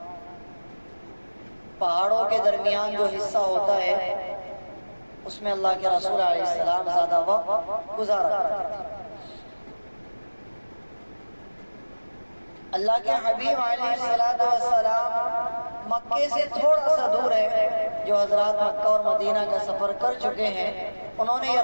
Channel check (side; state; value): both; inverted; correlation -1.00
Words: پہاڑوں کے درمیان جو حصہ ہوتا ہے اس میں اللہ کے رسول علیہ السلام زیادہ وقت گزارا کرتے تھے۔ اللہ کے حبیب علیہ السلام مکے سے تھوڑا سا دور ہے، جو حضرات مکہ اور مدینہ کا سفر کر چکے ہیں انہوں نے